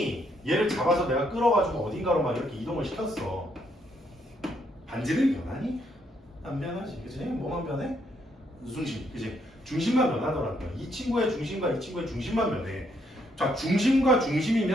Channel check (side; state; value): both; normal; correlation 0.73